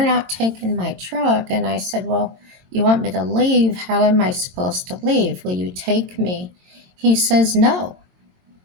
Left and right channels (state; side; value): late; left; 22 ms